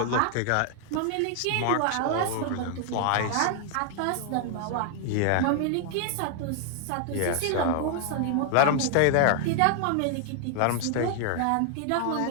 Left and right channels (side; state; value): both; different; correlation 0.00